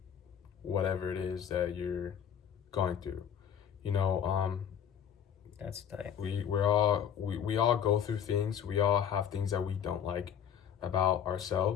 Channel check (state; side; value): quieter; right; 8.5 dB